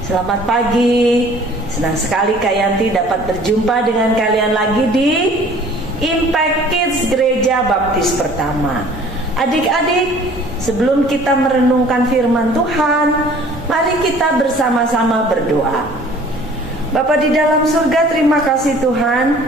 selamat pagi. Senang sekali Kak Yanti dapat berjumpa dengan kalian lagi di Impact Kids Gereja Baptis Pertama. Adik-adik, sebelum kita merenungkan firman Tuhan, mari kita bersama-sama berdoa. Bapa di dalam surga, terima kasih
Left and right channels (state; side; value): normal; both; correlation 0.51